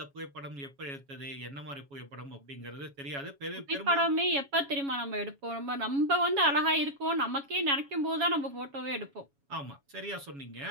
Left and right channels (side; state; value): left; late; 7.2 ms